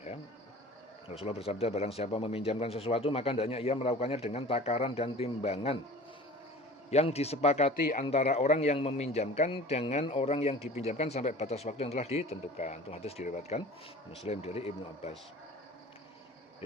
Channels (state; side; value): normal; both; correlation 0.42